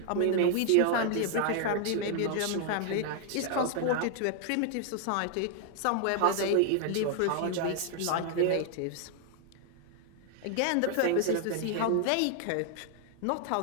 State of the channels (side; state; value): both; different; correlation 0.00